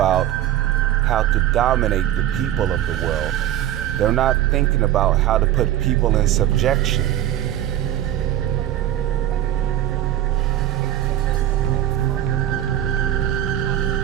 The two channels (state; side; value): quieter; left; 12.2 dB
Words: how to dominate the people of the world. They're not thinking about how to put people in subjection.